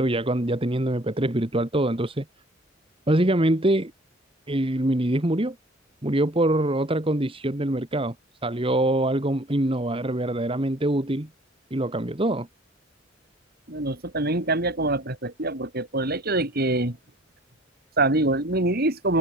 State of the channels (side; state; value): both; normal; correlation 0.52